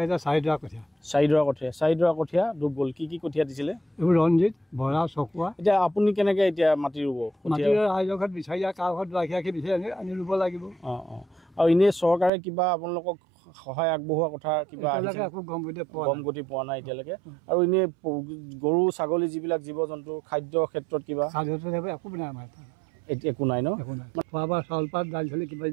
এতিয়া 4 ডৰা কঠীয়া। 4 ডৰা কঠীয়া ডুব গ'ল। কি কঠীয়া দিছিলে? এইবোৰ ৰঞ্জিত, বৰা, চকুৱা। এতিয়া আপুনি কেনেকৈ এতিয়া মাটি ৰুব? মাটি ৰাইজৰ ঘৰত বিচাৰি কাৰ ঘৰত ৰাখি বিচাৰি আনি ৰুব লাগিব। আৰু এনেই চৰকাৰে কিবা আপোনালোকক সহায় আগবঢ়োৱা কথা কিবা একো গম গতি পোৱা নাই এতিয়ালৈকে? আৰু এনেই গৰু ছাগলী যিবিলাক জীৱ জন্তু খাদ্যৰ ক্ষেত্ৰত কিবা একো নাই আমাৰ এতিয়া একো নাই ন? খোৱা বোৱা চাউল পাত দাইল চালি কিবা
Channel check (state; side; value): drops out; left; at 12.3 s